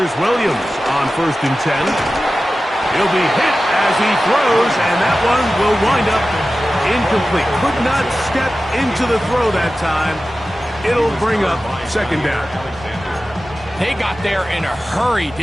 Williams on 1st and 10. He'll be hit as he throws, and that one will wind up incomplete. Could not step into the throw that time. It'll bring up 2nd down. They got there in a hurry,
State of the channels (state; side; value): normal; both; correlation 0.95